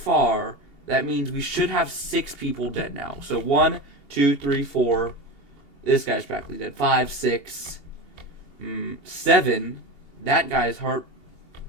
that means we should have 6 people dead now. So 1, 2, 3, 4. This guy's practically dead. 5, 6, 7. That guy's heart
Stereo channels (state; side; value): late; right; 2.8 ms